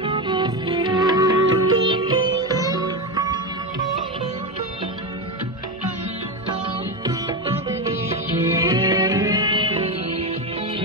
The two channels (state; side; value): normal; both; correlation 0.16